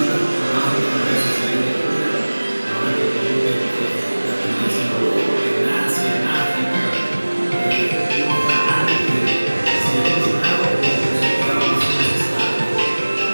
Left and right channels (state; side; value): inverted; both; correlation -1.00